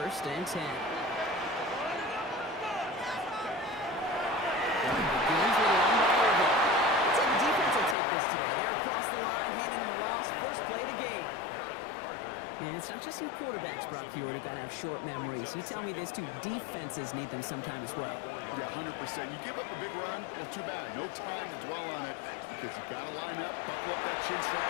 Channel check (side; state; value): right; drops out; at 8.0 s